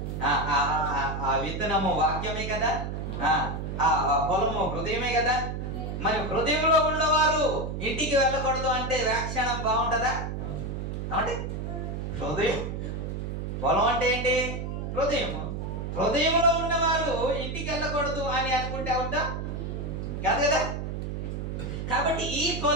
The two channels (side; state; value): right; noise; hum, 4 dB below the sound